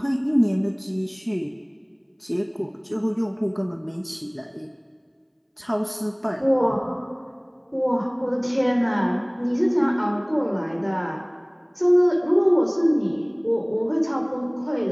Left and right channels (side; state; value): both; identical; correlation 1.00